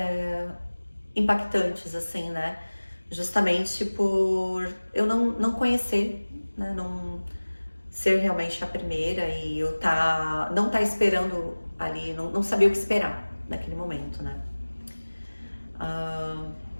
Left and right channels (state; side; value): inverted; both; correlation -1.00